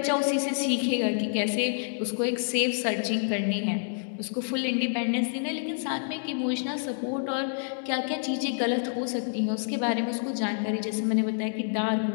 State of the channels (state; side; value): silent; right; digital silence